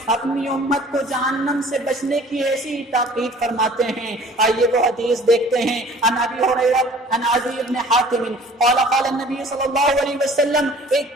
اپنی امت کو جہنم سے بچنے کی ایسی تاکید فرماتے ہیں۔ آئیے وہ حدیث دیکھتے ہیں، عن ابی ہریرہ عن عدی بن حاتم قال قال النبي صلی اللہ علیہ وسلم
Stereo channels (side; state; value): both; normal; correlation 0.50